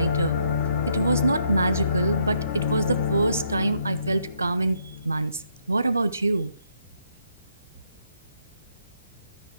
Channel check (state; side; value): inverted; both; correlation -0.73